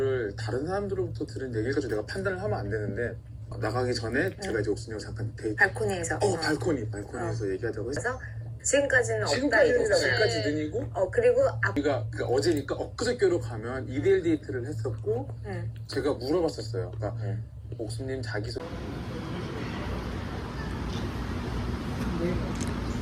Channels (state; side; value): identical; both; correlation 1.00